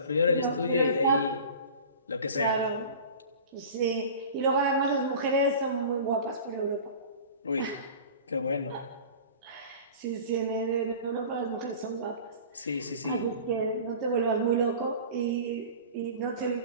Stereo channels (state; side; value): inverted; both; correlation -0.39